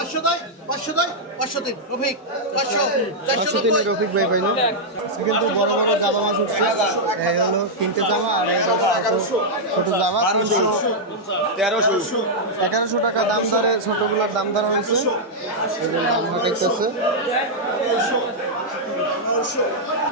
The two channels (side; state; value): both; normal; correlation -0.05